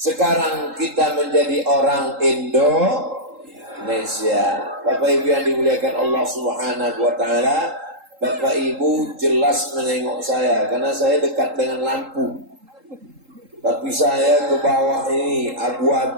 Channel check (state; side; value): late; left; 3.8 ms